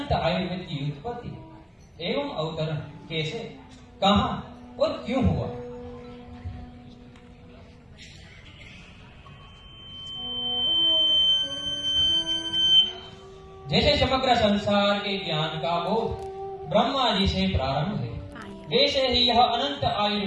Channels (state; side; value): identical; both; correlation 1.00